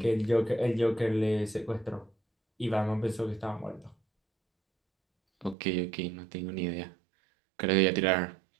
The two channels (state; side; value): drops out; left; at 5.6 s